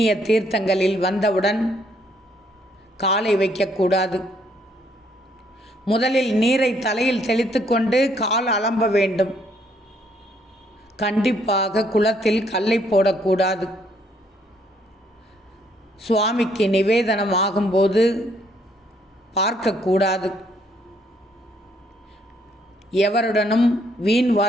தீர்த்தங்களில் வந்தவுடன் காலை வைக்கக்கூடாது. முதலில் நீரை தலையில் தெளித்து கொண்டு கால் அலம்ப வேண்டும். கண்டிப்பாக குளத்தில் கல்லை போடக்கூடாது. சுவாமிக்கு நிவேதனம் ஆகும்போது பார்க்கக்கூடாது. எவருடனும் வீண்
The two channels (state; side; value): normal; both; correlation 0.69